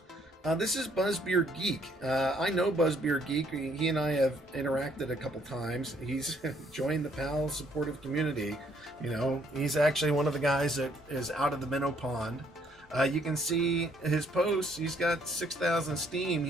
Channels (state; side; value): normal; both; correlation 0.66